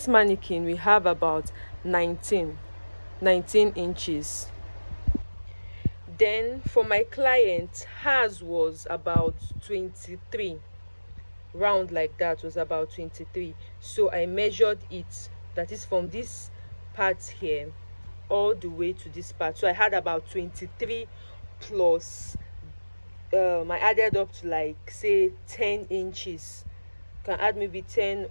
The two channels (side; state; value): both; inverted; correlation -1.00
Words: mannequin we have about 19 inches. Then for my client, hers was about 23, round like that was about 23. So I measured it, that is from this part here all the way to this part. So I had about 23 plus I added up to like say 10 inches. You can add maybe 10